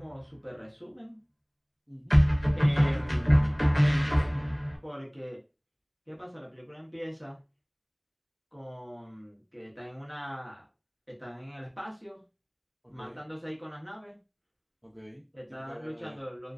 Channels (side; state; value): both; identical; correlation 1.00